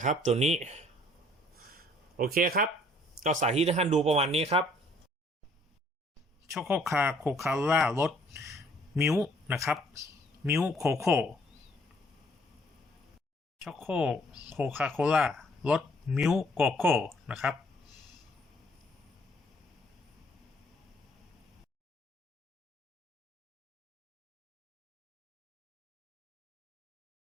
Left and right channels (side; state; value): both; normal; correlation 0.61